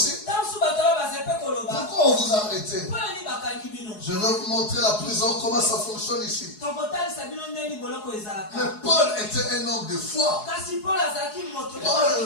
pourquoi on vous a arrêté? Je vais vous montrer la prison, comment ça fonctionne ici. Mais Paul était un homme de foi.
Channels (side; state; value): right; late; 4.7 ms